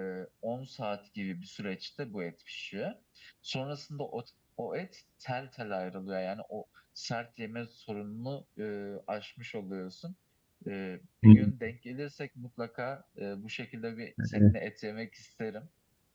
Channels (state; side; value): identical; both; correlation 1.00